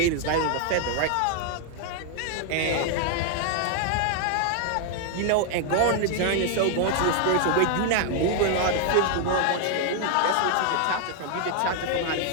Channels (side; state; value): both; different; correlation 0.00